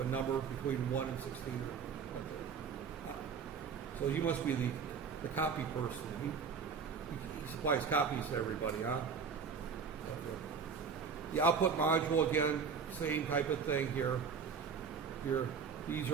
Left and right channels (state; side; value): quieter; left; 6.0 dB